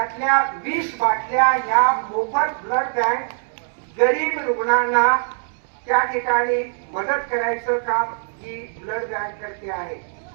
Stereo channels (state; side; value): silent; left; digital silence